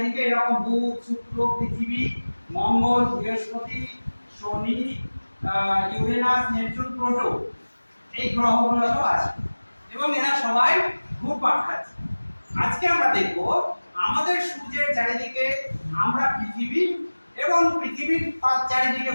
এরকম বুধ, শুক্র, পৃথিবী, মঙ্গল, বৃহস্পতি, শনি, ইউরেনাস, নেপচুন, প্লুটো, এই গ্রহগুলো তো আছে এবং এরা সবাই ঘুরপাক খাচ্ছে। আজকে আমরা দেখব আমাদের সূর্যের চারিদিকে আমরা পৃথিবী এবং পৃথিবীর চারিদিকে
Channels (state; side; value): inverted; both; correlation -1.00